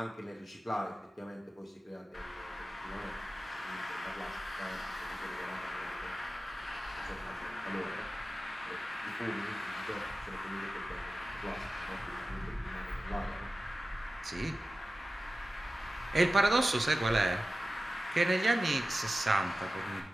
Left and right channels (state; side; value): normal; both; correlation 0.95